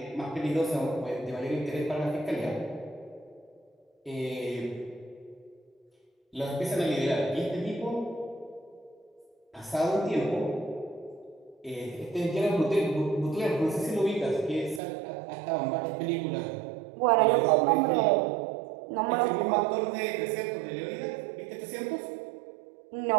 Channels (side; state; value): left; drops out; at 14.8 s